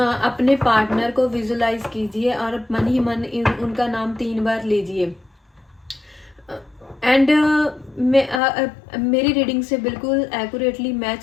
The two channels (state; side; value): drops out; right; at 8.4 s